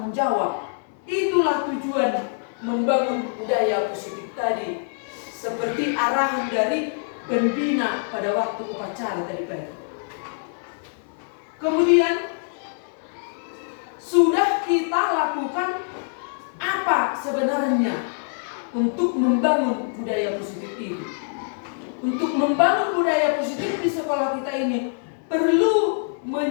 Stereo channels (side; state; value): right; silent; 62 dB below the other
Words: jawab. Itulah tujuan membangun budaya positif tadi, seperti arahan dari pembina pada waktu upacara tadi pagi. Kemudian sudah kita lakukan apa sebenarnya untuk membangun budaya positif ini? Untuk membangun budaya positif di sekolah kita ini perlu